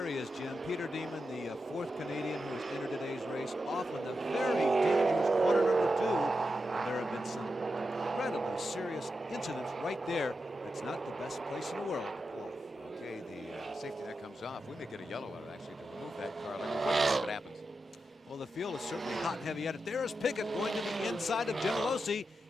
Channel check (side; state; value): both; normal; correlation 0.89